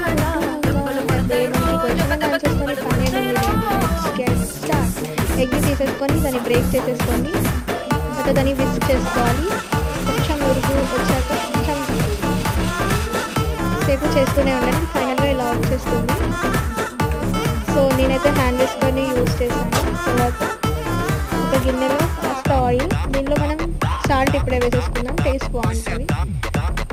ఎగ్ తీసేసుకొని దాన్ని బ్రేక్ చేసేసుకోండి. తర్వాత దాన్ని విస్క్ చేసుకోవాలి. కొంచెం ఉరుగు వచ్చాక కొంచెం సేపు చేస్తూనే ఉండండి. ఫైనల్గా ఇలా వచ్చేస్తుంది. సో నేనైతే హ్యాండ్ వేసుకొని యూజ్ చేశాను. తర్వాత ఒక గిన్నెలో ఫస్ట్ ఆయిల్, దీనిలో మనం సాల్ట్ ఇప్పుడే వేసేసుకుందాం, టేస్ట్ బాగుంటుంది.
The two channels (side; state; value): both; identical; correlation 1.00